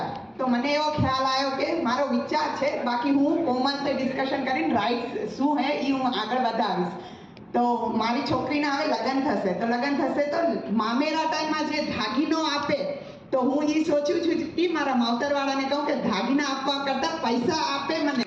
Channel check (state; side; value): identical; both; correlation 1.00